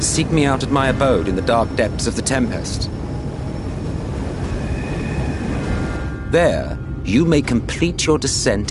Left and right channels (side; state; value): both; identical; correlation 1.00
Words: seek me out at my abode in the dark depths of the Tempest. There, you may complete your